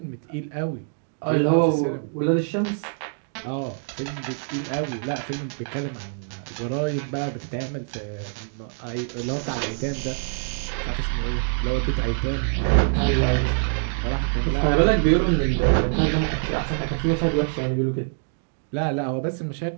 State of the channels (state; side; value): silent; left; digital silence